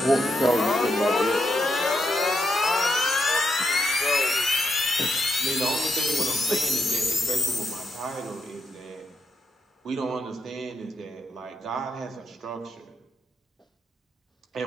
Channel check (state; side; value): normal; both; correlation 0.81